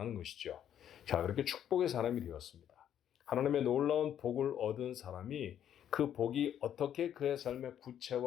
것이죠. 자, 그렇게 축복의 사람이 되었습니다. 하나님의 놀라운 복을 얻은 사람이 그 복이 어떻게 그의 삶에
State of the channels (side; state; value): right; quieter; 10.0 dB